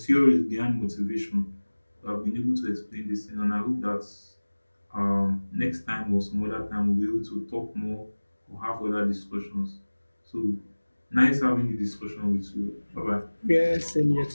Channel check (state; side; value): inverted; both; correlation -1.00